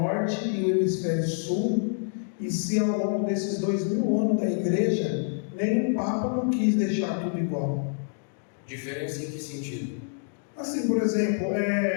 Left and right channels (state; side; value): silent; right; 60 dB below the other